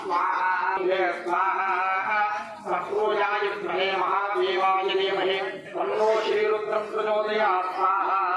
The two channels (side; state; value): both; identical; correlation 1.00